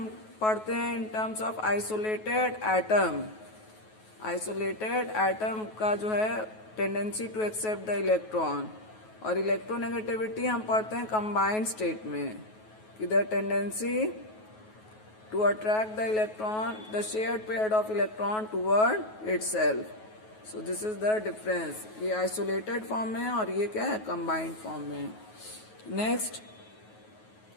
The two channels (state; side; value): late; right; 9.3 ms